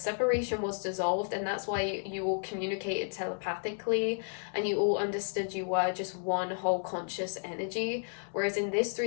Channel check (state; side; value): silent; right; 56 dB below the other